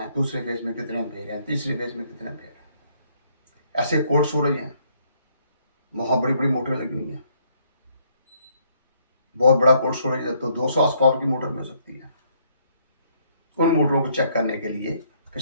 दूसरे फेस में कितने एम्पेयर हैं, तीसरे फेस में कितने एम्पेयर हैं। ऐसे कोल्ड स्टोरेज हैं, वहाँ बड़ी बड़ी मोटरें लगी हुई हैं, बहुत बड़ा कोल्ड स्टोरेज है तो 200 हॉर्स पावर की मोटर भी हो सकती है। उन मोटरों को चेक करने के लिए फिर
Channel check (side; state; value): both; inverted; correlation -0.68